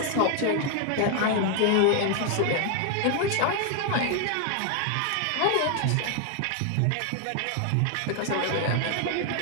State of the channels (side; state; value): both; different; correlation 0.01